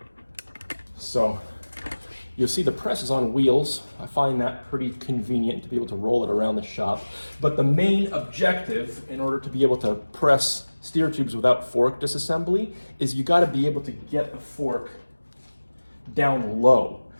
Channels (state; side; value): inverted; both; correlation -1.00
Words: So you'll see the press is on wheels. I find that pretty convenient to be able to roll it around the shop. But the main objective in order to be able to press steer tubes without fork disassembly is you got to be able to get the fork down low.